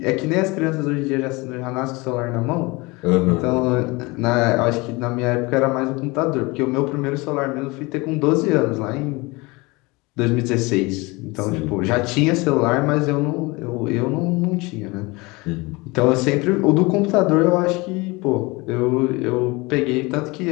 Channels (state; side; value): quieter; right; 24.5 dB